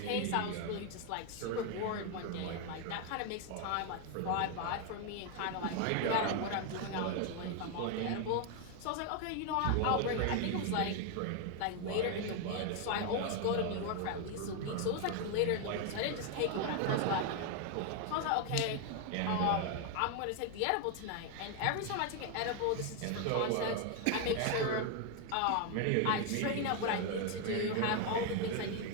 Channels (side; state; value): both; different; correlation 0.01